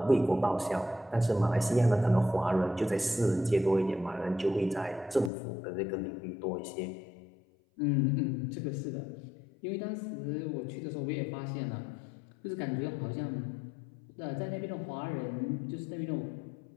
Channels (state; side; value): drops out; right; at 5.3 s